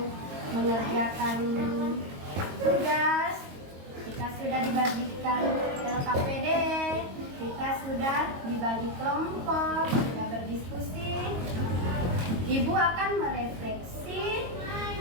mengerjakan tugas. Kita sudah dibagikan LKPD, kita sudah dibagi kelompok, sudah berdiskusi. Ibu akan merefleksi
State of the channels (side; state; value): left; late; 22 ms